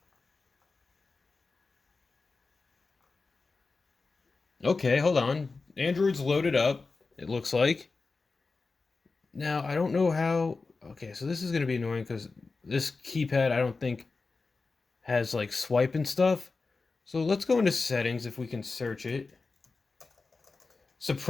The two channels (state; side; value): quieter; right; 4.0 dB